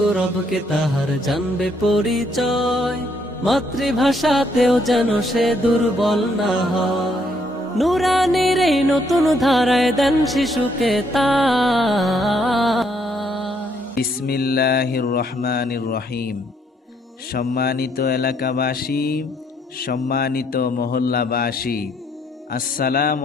তাহার জানবে পরিচয়, মাতৃভাষাতেও যেন সে দুর্বল না হয়। নুরানির এই নতুন ধারায় দেন শিশুকে তাই। বিসমিল্লাহির রহমানির রহিম। সম্মানিত এলাকাবাসী, সম্মানিত মহল্লাবাসী, আসসালামু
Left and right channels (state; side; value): normal; both; correlation 0.71